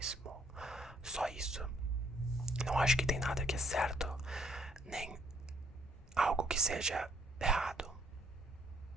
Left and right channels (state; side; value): normal; both; correlation 0.66